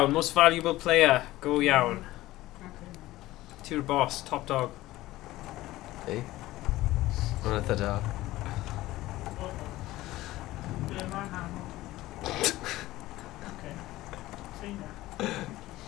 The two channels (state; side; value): quieter; right; 16.9 dB